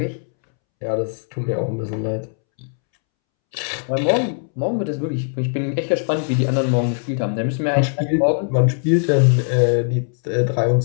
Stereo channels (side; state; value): right; silent; 66 dB below the other